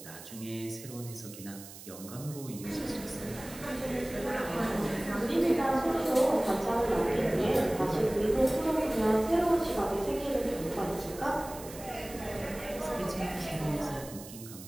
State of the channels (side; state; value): right; noise; hiss, 15 dB below the sound